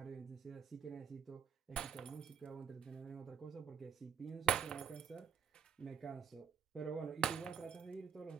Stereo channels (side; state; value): left; quieter; 7.6 dB